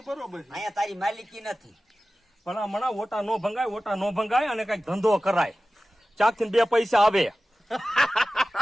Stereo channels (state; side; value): normal; both; correlation 0.96